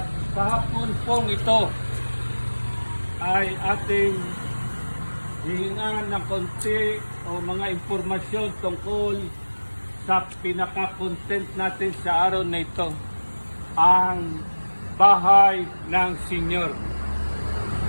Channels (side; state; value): both; inverted; correlation -1.00